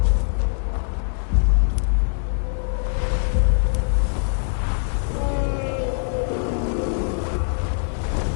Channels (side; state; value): right; silent; digital silence